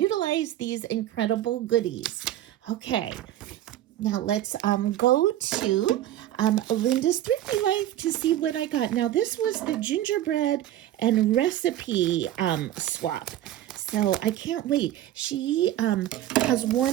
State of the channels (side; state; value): left; quieter; 13.0 dB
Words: these incredible goodies. Okay. Now let's go to Linda's Thrifty Life to see what I got. Now this was the gingerbread and recipe swap. So I can't wait. She has